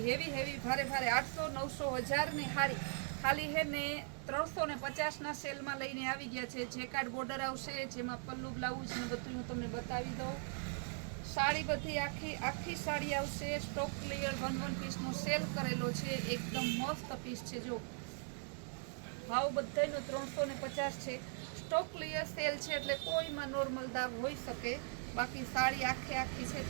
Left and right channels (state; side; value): silent; left; 51 dB below the other